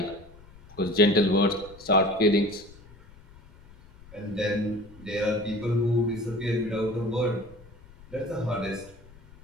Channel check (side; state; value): left; noise; rumble, 22 dB below the sound